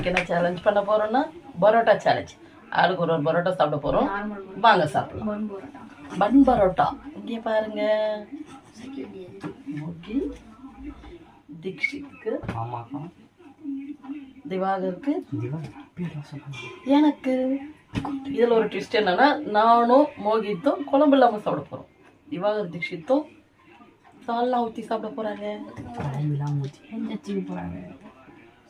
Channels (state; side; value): identical; both; correlation 1.00